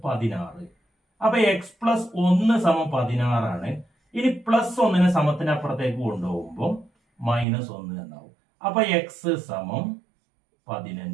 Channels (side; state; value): left; drops out; at 7.5 s